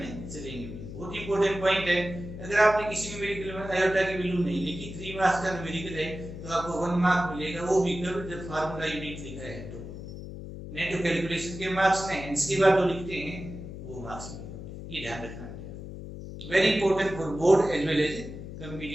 चलेंगे। बहुत इंपॉर्टेंट पॉइंट है, अगर आपने किसी न्यूमेरिकल में आयोटा की वैल्यू नहीं लिखी, 3 मार्क्स का न्यूमेरिकल है तो आपको 1 मार्क मिलेगा, वो भी जब फार्मूला यूनिट लिखा है तो। नहीं तो कैलकुलेशन के मार्क्स में इसके बाद जो लिखते हैं वो मार्क्स मिलेगा, ये ध्यान रखना है। Very important for board as well as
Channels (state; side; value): noise; left; hum, 10 dB below the sound